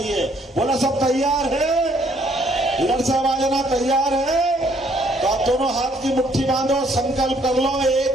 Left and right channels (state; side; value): normal; both; correlation 0.66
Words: बोला सब तैयार है? इधर से आवाज आना, तैयार है? तो आप दोनों हाथ की मुट्ठी बांधो, संकल्प कर लो,